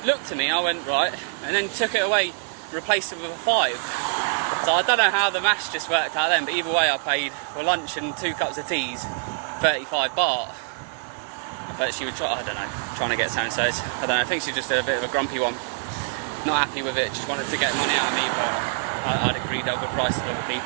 Looked at me, I went, right, and then took it away, replaced it with a 5. So I don't know how the maths just worked out then, but either way I paid for lunch and 2 cups of teas, 35 baht. But she was, trying to get something, so I don't know, I think she's just a bit of a grumpy one. Not happy with it, just wanted to get money out of me, but I'd agreed over prices with other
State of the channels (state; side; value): silent; left; 62 dB below the other